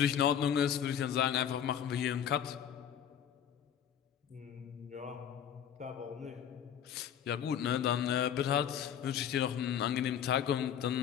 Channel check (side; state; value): right; quieter; 9.1 dB